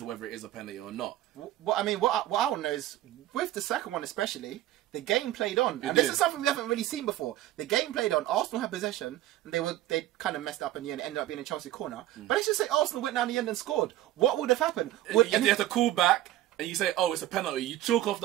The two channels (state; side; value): quieter; left; 14.2 dB